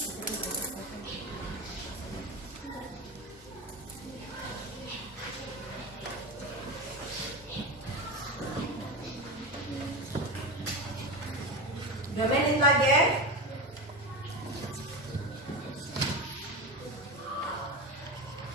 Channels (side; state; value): both; normal; correlation 0.21